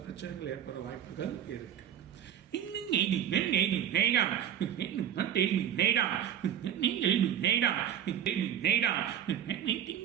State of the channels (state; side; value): quieter; left; 10.0 dB